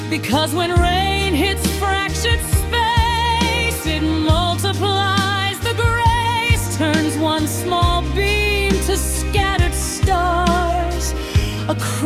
because when rain hits fractured space, it multiplies the grace, turns one small beam to scattered stars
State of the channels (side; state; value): both; identical; correlation 1.00